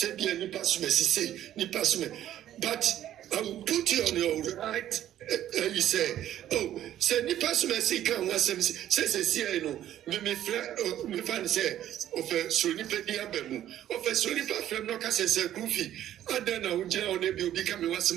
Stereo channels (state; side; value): quieter; left; 12.0 dB